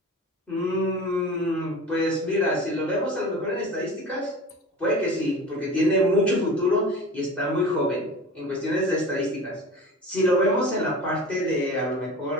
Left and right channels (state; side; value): normal; both; correlation 0.36